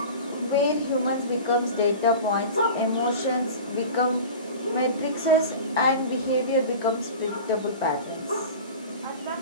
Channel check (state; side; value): inverted; both; correlation -0.35